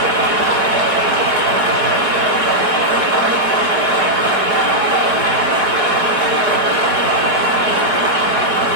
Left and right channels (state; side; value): late; left; 5.2 ms